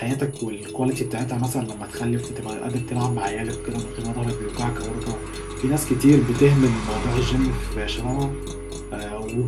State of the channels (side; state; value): both; identical; correlation 1.00